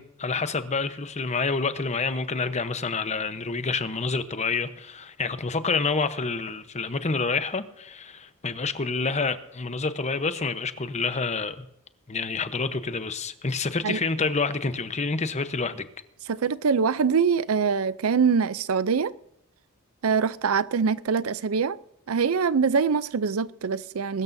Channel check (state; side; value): normal; both; correlation 0.07